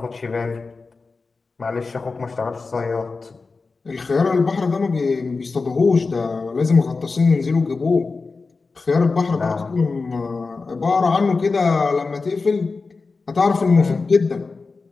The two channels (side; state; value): right; quieter; 4.2 dB